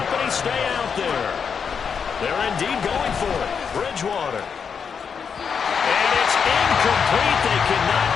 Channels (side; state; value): right; quieter; 6.5 dB